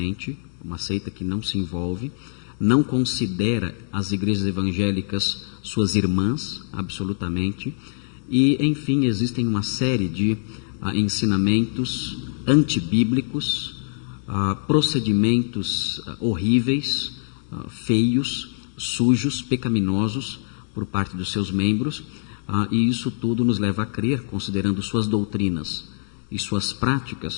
uma seita que não se envolve, não considera as igrejas evangélicas suas irmãs, absolutamente, e, enfim, existem uma série de ensinamentos antibíblicos, procedimentos horríveis, feios, sujos, pecaminosos por parte dos seus membros, e isso tudo nos leva a crer, considerando suas doutrinas e suas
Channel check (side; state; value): right; silent; 63 dB below the other